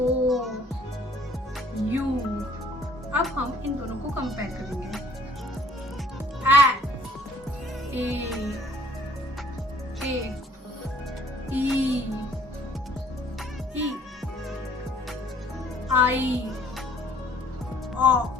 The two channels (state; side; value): normal; both; correlation 0.58